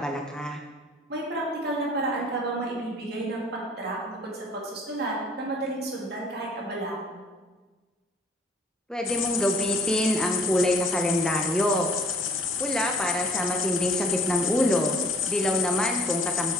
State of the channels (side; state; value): both; normal; correlation 0.55